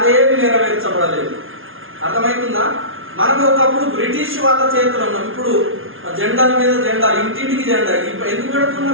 నెరవేర్చబడలేదు. అర్థమవుతుందా? మనం ఒకప్పుడు బ్రిటిష్ వాళ్ళ చేతులు ఉన్నాం, ఇప్పుడు జెండాల మీద జెండాలు, ఇంటింటికి జెండా. ఎందుకు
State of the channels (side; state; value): left; late; 0.60 ms